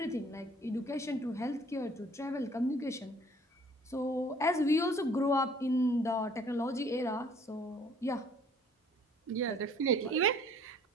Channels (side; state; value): both; normal; correlation 0.56